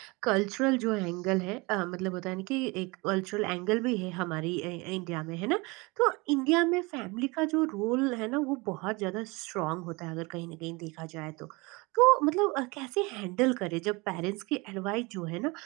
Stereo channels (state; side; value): quieter; left; 25.8 dB